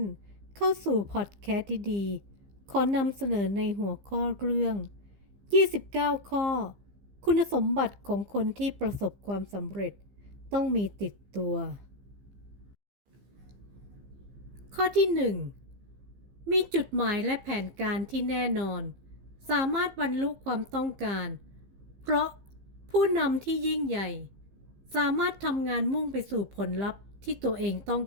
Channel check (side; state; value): left; late; 15 ms